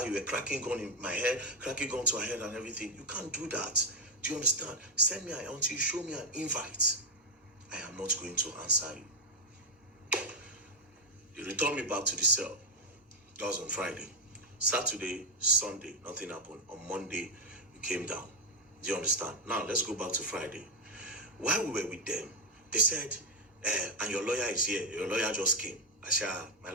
You were cracking gun in my head, cracking gun to her head and everything. You can't do that. Do you understand? Send me until you show me an invite. I am not going to answer you. They returned me back to the cell. That was on Friday. Saturday, Sunday, nothing happened. On Monday, we came down. Do you understand? Now, let's go back to Friday. While we were with them, they said, and your lawyer is here. Your lawyer just came. I said, my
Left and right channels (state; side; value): normal; both; correlation 0.03